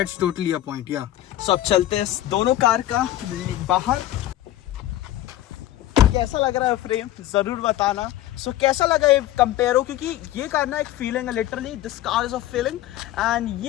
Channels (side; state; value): right; quieter; 14.0 dB